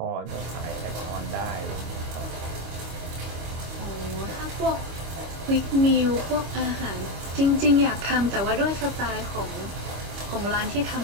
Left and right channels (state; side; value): late; left; 25 ms